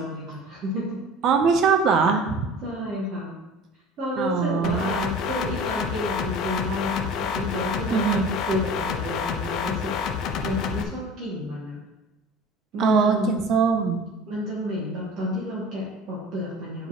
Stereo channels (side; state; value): both; normal; correlation 0.41